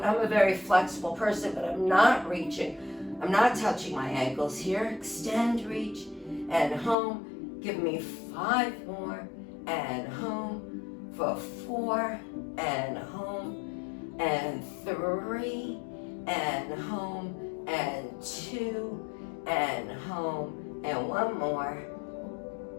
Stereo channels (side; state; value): right; drops out; at 7.0 s